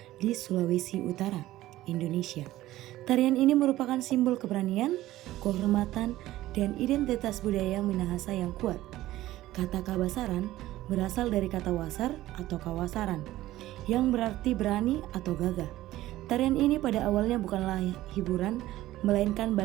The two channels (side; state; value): left; quieter; 15.6 dB